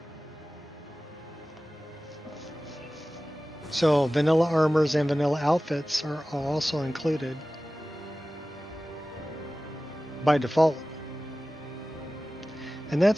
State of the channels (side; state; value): both; normal; correlation 0.96